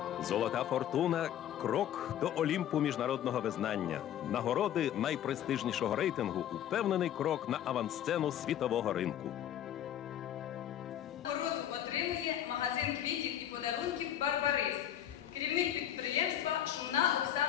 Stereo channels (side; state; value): right; quieter; 10.8 dB